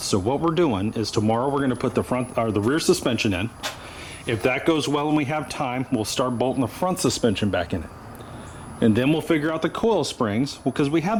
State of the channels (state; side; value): identical; both; correlation 1.00